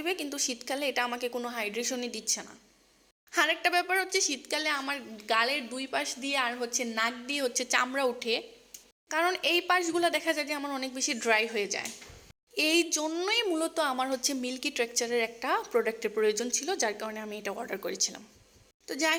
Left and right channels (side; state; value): both; identical; correlation 1.00